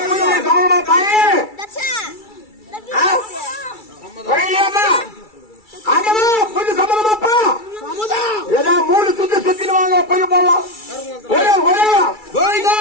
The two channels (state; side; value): late; right; 2.3 ms